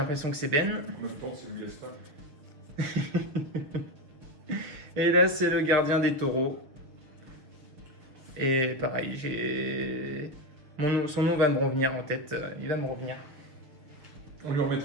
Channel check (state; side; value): late; left; 6.8 ms